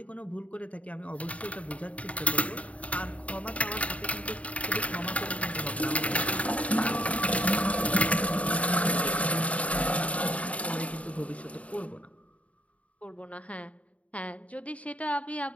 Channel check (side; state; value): right; late; 0.067 ms